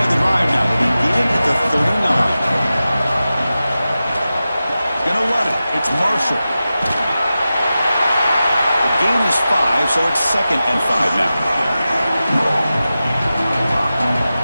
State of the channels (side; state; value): both; inverted; correlation -0.94